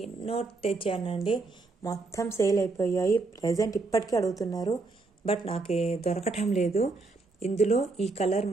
ఎన్నో తెచ్చానండి, మొత్తం సేల్ అయిపోయాయి. ప్రజెంట్ ఇప్పటికీ అడుగుతున్నారు, బట్ నాకు దొరకటం లేదు. ఇందులో ఈ కలర్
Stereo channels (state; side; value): quieter; left; 3.6 dB